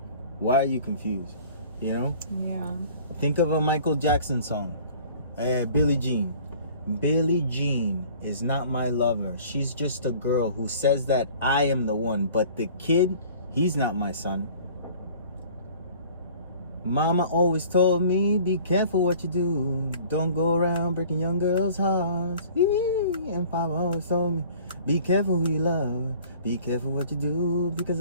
Why are you confused? You know? Yeah. Think of a Michael Jackson song. Billie Jean. Billie Jean is not my lover. She's just a girl who says that I am the one. But the kid, he's not my son. Mama always told me, be careful what you do. Don't go around breaking young girls' hearts. And Papa always told me, be careful who you love. Be careful what you do, because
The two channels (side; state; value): both; inverted; correlation -0.49